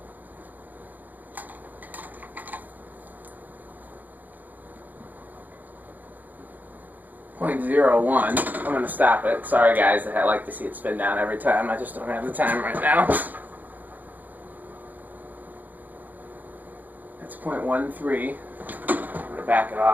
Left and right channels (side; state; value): left; late; 0.083 ms